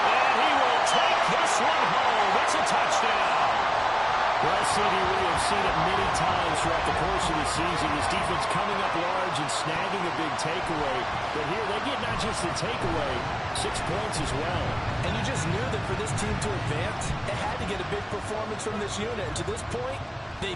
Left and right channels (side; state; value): both; identical; correlation 1.00